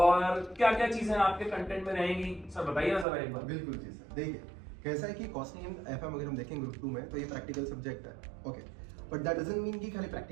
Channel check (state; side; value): drops out; left; at 3.1 s